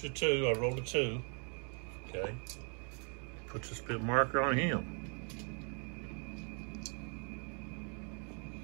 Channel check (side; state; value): left; quieter; 39.3 dB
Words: of 2, I rolled a 2. Okay, puts a spent marker on him.